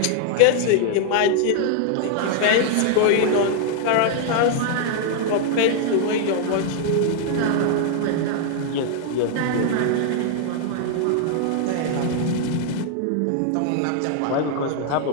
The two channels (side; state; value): both; different; correlation 0.00